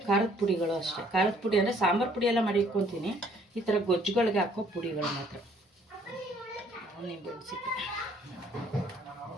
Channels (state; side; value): normal; both; correlation 0.62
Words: ಖಾರದ ಪುಡಿಗಳು ಅಷ್ಟೇ. ಖಾರದ ಪುಡಿ ಅಂದರೆ ಸಾಂಬಾರು ಪುಡಿ ಎಲ್ಲ ಮಾಡಿ ಇಟ್ಕೊತೀನಿ. ಈ ಥರ ಗೊಜ್ಜುಗಳಿಗೆ ಹಾಕೋ ಪುಡಿಗಳು ಮಾತ್ರ. ನಿಂಬೆ ಸಿಪ್ಪೆ